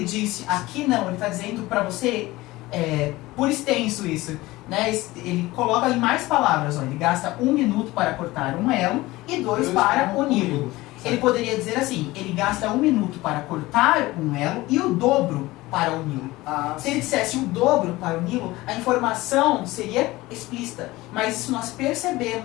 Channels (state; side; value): quieter; right; 19.3 dB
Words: disse, aqui não, ele está dizendo para você, por extenso isso, né? Ele coloca em mais palavras, ó, ele gasta 1 minuto para cortar um elo e 2 para uni-lo. Ele poderia dizer assim, ele gasta 1 minuto para cortar um elo e o dobro para uni-lo. Se ele dissesse o dobro para uni-lo, a informação seria explícita, mas isso nós